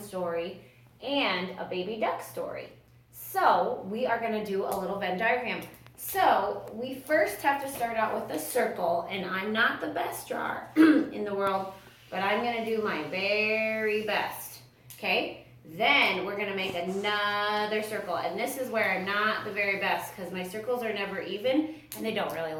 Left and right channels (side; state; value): both; identical; correlation 1.00